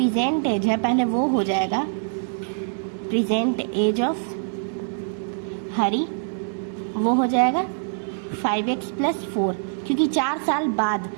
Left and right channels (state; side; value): silent; left; digital silence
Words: एज है, पहले वो हो जाएगा प्रेजेंट एज ऑफ हरी, वो हो जाएगा 5x + 4, क्योंकि 4 साल बाद,